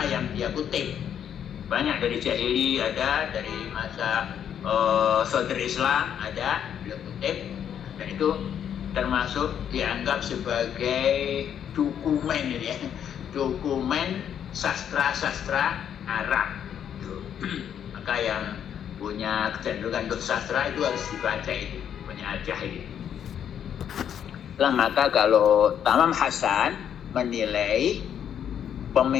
yang dia kutip. Banyak dari Jahili ada, dari masa Sodr Islam ada, dia kutip, dan itu termasuk dianggap sebagai dokumen ya, dokumen sastra-sastra Arab. Maka yang punya kecenderungan untuk sastra itu harus dibaca, itu punya Al-Jahid. Maka kalau Tamam Hasan menilai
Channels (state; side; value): quieter; right; 9.1 dB